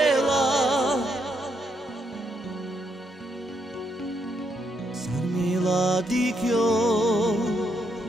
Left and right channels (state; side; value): normal; both; correlation 0.77